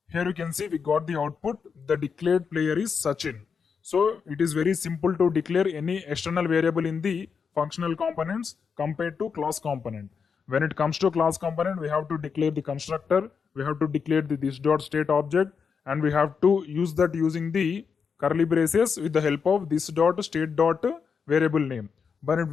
Here you can see we got the output. The declared player is Sachin. So it is very simple to declare any external variable in the functional components compared to class component. When it comes to class component, we have to declare the constructor, we have to declare the this.state object, and we have to use that using the curly braces with the help of this.state.variable name.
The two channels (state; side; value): quieter; right; 6.0 dB